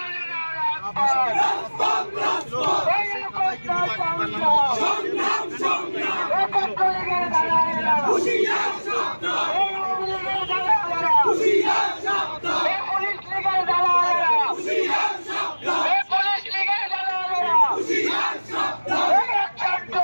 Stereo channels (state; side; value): inverted; both; correlation -1.00